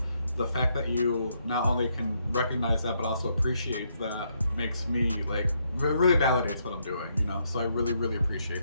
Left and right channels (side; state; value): both; inverted; correlation -0.75